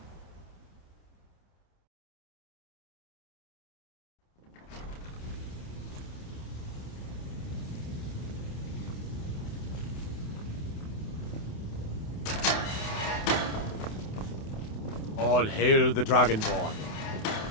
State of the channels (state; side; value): late; right; 28 ms